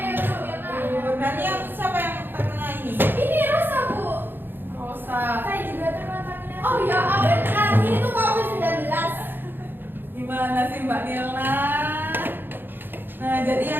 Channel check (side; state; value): left; late; 0.097 ms